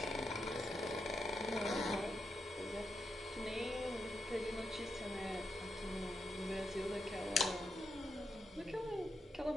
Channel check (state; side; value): normal; both; correlation 0.84